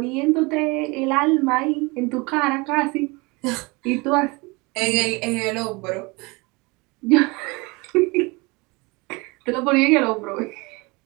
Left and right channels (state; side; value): quieter; left; 26.2 dB